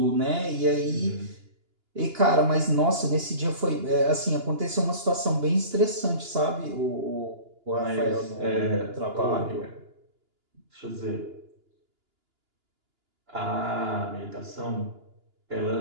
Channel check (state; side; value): late; left; 2.9 ms